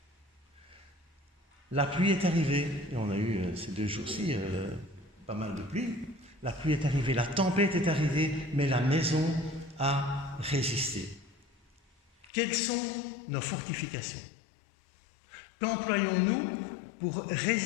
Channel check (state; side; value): drops out; right; at 12.3 s